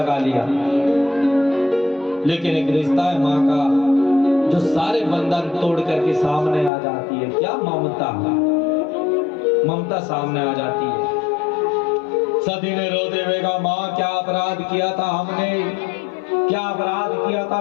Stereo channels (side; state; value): right; drops out; at 6.7 s